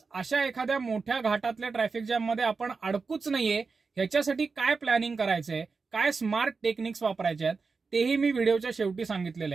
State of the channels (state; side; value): quieter; left; 4.6 dB